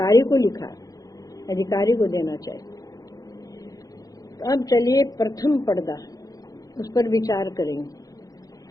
को लिखा, अधिकारी को देना चाहिए। तो अब चलिए प्रथम पर्दा, उस पर विचार करेंगे।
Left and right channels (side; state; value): right; late; 0.17 ms